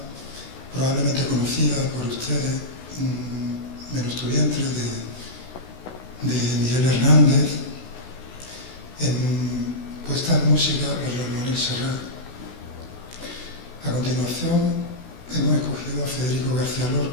probablemente conocida por ustedes, Menos tu vientre, de Miguel Hernández, puesta en música por Joan Manuel Serrat. A continuación hemos escogido a Federico García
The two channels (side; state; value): right; late; 16 ms